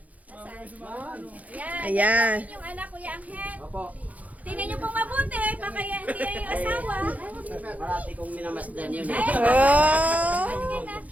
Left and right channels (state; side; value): late; left; 0.074 ms